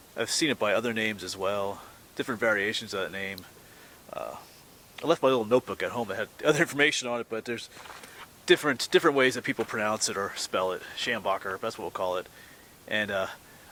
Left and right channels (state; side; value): identical; both; correlation 1.00